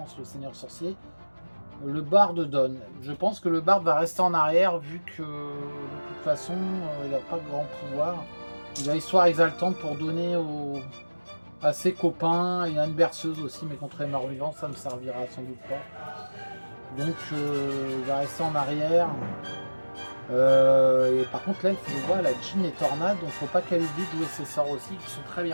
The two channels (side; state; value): both; inverted; correlation -1.00